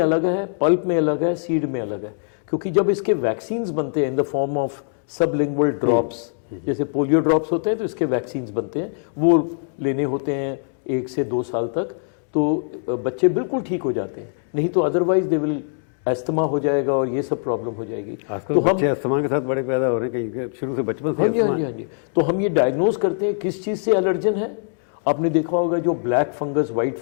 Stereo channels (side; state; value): right; silent; digital silence